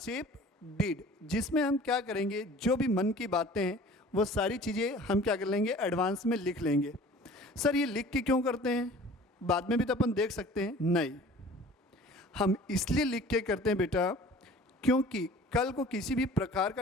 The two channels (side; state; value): both; normal; correlation 0.46